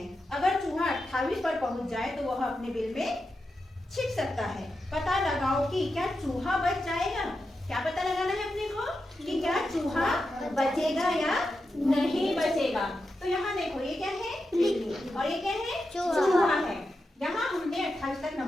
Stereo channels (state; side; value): normal; both; correlation 0.89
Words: अगर चूहा 28 पर पहुंच जाए तो वह अपने बिल में छिप सकता है। पता लगाओ कि क्या चूहा बच जाएगा। क्या पता लगाना है अपने को कि क्या चूहा बचेगा या नहीं बचेगा। तो यहाँ देखो, ये क्या है, बिल्ली, और ये क्या है, चूहा है। यहाँ हमने 28 तक